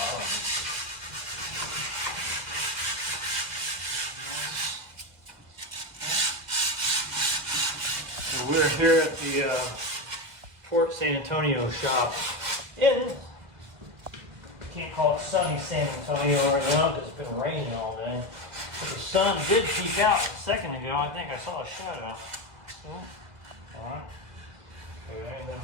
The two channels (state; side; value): late; left; 1.8 ms